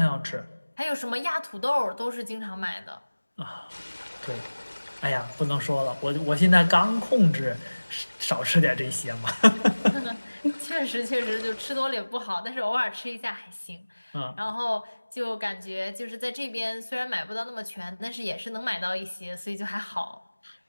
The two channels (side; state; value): both; inverted; correlation -1.00